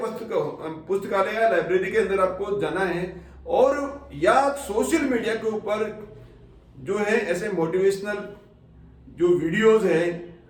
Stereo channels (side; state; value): both; identical; correlation 1.00